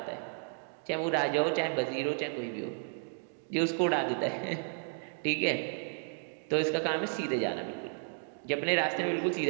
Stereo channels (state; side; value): silent; left; 56 dB below the other